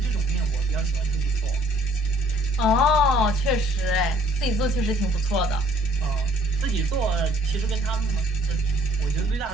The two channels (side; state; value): both; normal; correlation 0.59